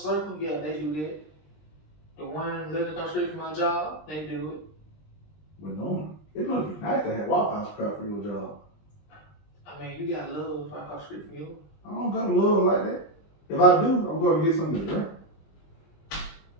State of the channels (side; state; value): right; late; 20 ms